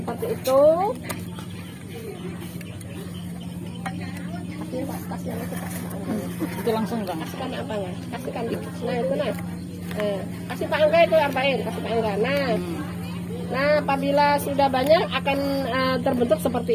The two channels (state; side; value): identical; both; correlation 1.00